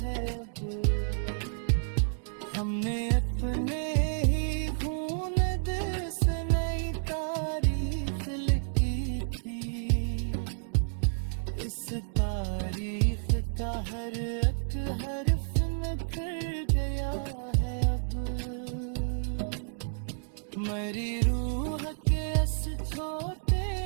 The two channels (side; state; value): left; silent; digital silence